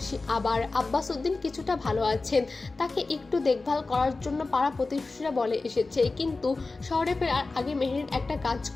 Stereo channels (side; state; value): right; quieter; 3.6 dB